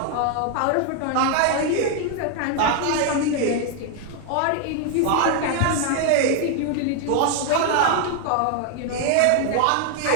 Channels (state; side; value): different; both; correlation 0.00